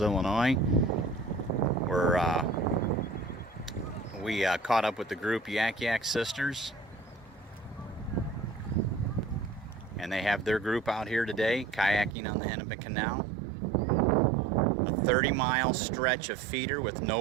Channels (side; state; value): left; drops out; at 12.2 s